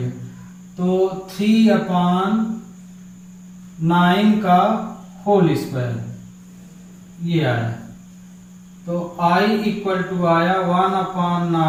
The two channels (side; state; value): both; identical; correlation 1.00